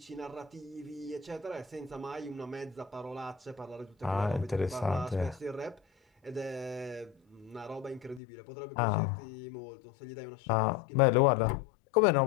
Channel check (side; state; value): right; drops out; at 8.2 s